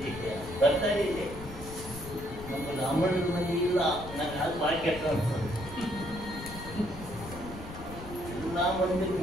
ಬರ್ತಾ ಇದೆ. ನಮ್ಮ ಬ್ರಾಹ್ಮಣರ ಮನೆ ಇಲ್ಲ, ನನಗೆ ಅದು ಭಾಳ ಕೆಟ್ಟ ಅನ್ಸೋದು. ಎಲ್ಲ ಮಂದಿ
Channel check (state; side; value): noise; left; rumble, 12 dB below the sound